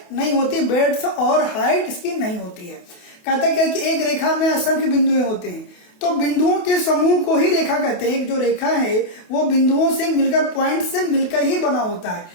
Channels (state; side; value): late; right; 28 ms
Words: नहीं होती, ब्रेड्थ और हाइट इसकी नहीं होती है। कहता क्या कि एक रेखा में असंख्य बिंदुएं होते हैं, तो बिंदुओं के समूह को ही रेखा कहते हैं। एक जो रेखा है वो बिंदुओं से मिलकर, पॉइंट से मिलकर ही बना होता है,